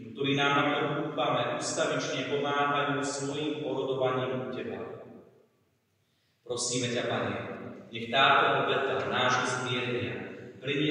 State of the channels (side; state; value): both; identical; correlation 1.00